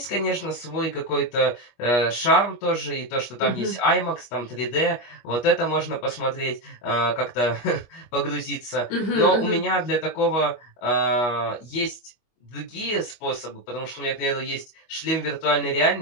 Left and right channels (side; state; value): right; late; 25 ms